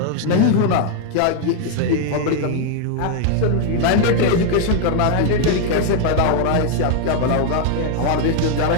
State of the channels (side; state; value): both; different; correlation 0.00